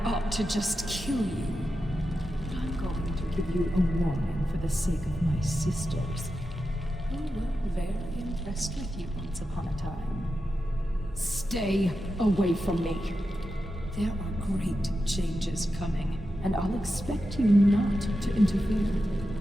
ought to just kill you. But I'm going to give you a warning for the sake of my sisters, who were very impressed with you once upon a time. Stay away from me. There are great changes coming, and I'll expect you not to interfere.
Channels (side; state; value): both; normal; correlation 0.90